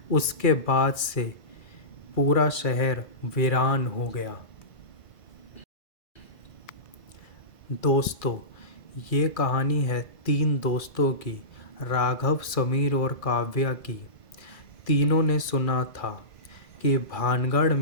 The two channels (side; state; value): right; late; 2.4 ms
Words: उसके बाद से पूरा शहर वीरान हो गया। दोस्तों, ये कहानी है 3 दोस्तों की, राघव, समीर और काव्या की। तीनों ने सुना था कि भानगढ़